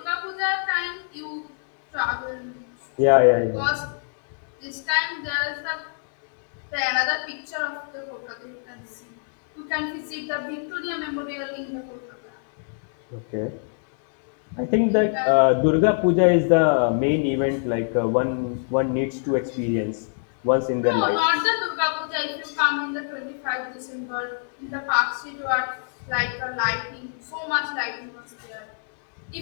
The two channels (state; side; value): silent; right; digital silence